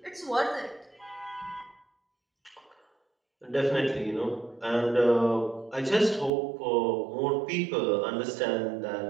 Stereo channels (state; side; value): drops out; left; at 6.3 s